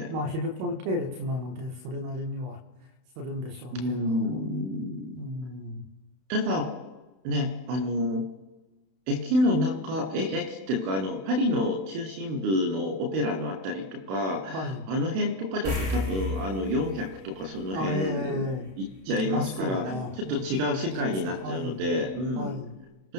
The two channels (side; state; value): left; late; 31 ms